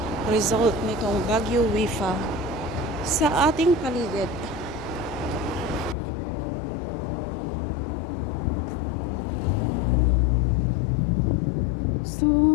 result nitong Baguio Wifa sa ating paligid?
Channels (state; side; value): drops out; right; at 6.0 s